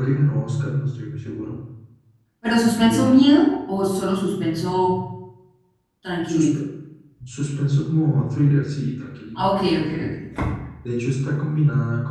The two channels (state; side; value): identical; both; correlation 1.00